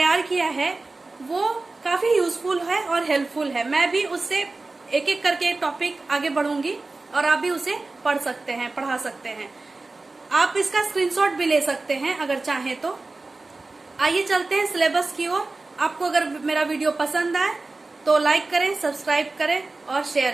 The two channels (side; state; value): left; quieter; 3.4 dB